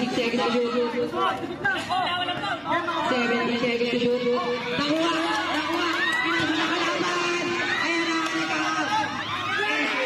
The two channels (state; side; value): identical; both; correlation 1.00